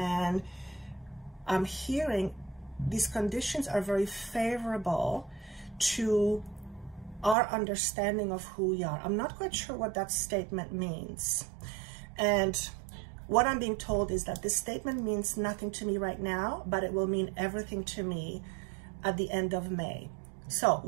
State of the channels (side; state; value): left; drops out; at 7.4 s